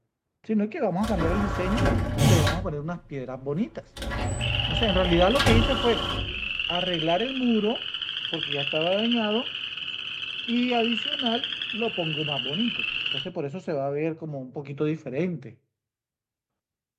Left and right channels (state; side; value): identical; both; correlation 1.00